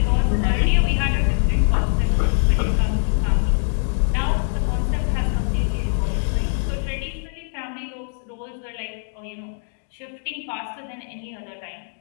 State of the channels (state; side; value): silent; right; digital silence